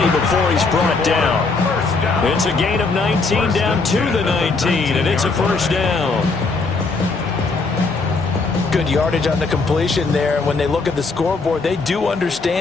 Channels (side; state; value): right; quieter; 4.0 dB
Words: before he's brought down. It's a gain of 19 down to the 19, and it's a first down. Good yardage on the completion there. When they look at the scoreboard, they do